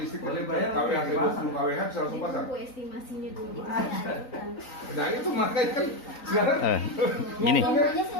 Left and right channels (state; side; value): late; right; 3.9 ms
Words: Boleh dari bayar, KWH boleh 20 KWH bisa langsung pasang. Bu estimasinya dulu. Itu saya ajukan. Nah itu makanya kan sekarang Gini, Semuanya